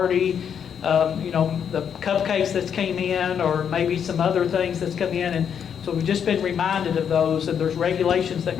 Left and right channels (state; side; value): quieter; right; 7.9 dB